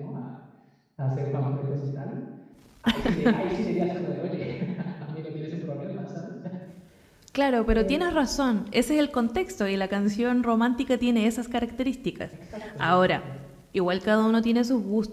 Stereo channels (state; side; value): identical; both; correlation 1.00